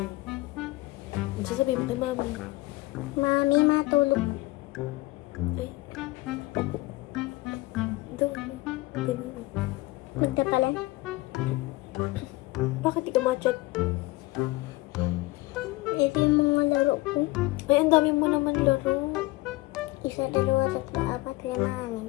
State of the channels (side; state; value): right; quieter; 20.6 dB